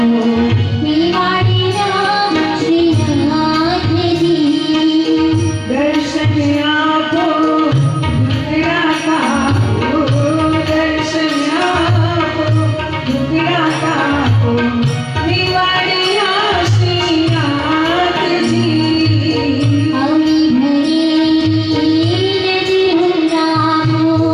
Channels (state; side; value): identical; both; correlation 1.00